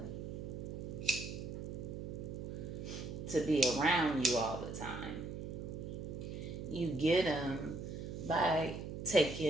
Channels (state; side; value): noise; right; hum, 6 dB below the sound